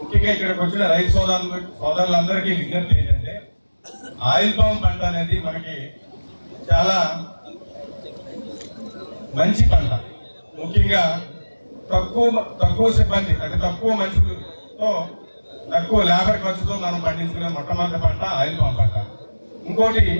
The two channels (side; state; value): both; inverted; correlation -1.00